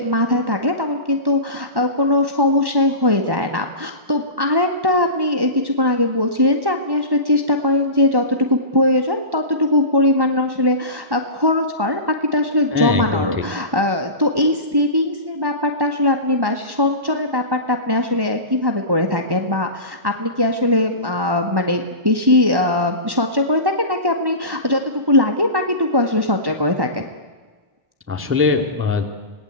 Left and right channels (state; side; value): late; left; 1.1 ms